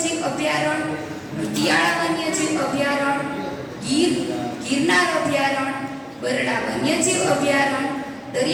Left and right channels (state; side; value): identical; both; correlation 1.00